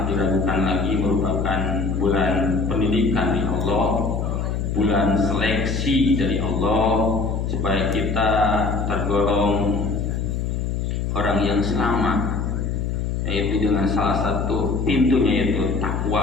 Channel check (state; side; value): noise; left; hum, 1 dB below the sound